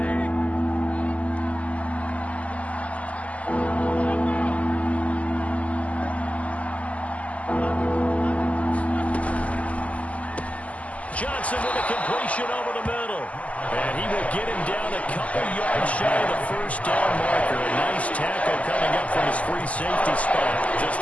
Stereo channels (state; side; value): late; right; 0.069 ms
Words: Johnson with a completion over the middle. And he will get him down a couple yards shy of the first down marker. A nice tackle coming up from his free safety spot. Just